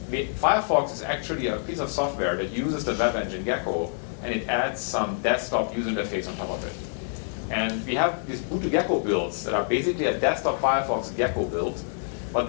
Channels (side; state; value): right; silent; digital silence